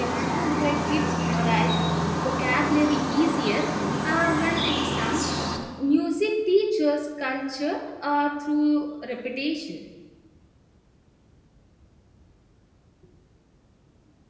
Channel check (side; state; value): both; identical; correlation 1.00